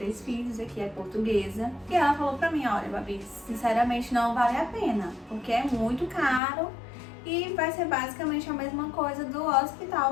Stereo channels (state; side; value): drops out; right; at 6.4 s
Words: filhos, aqui é portuguesa. E ela falou pra mim, olha, Babi, sinceramente não vale a pena, porque é muito caro e vai ser basicamente a mesma coisa do